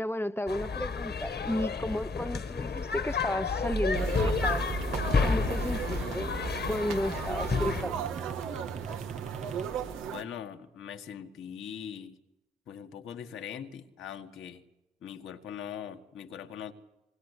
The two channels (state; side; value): normal; both; correlation 0.68